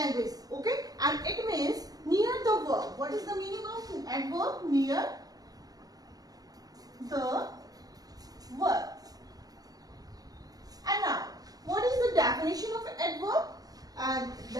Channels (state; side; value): late; left; 0.18 ms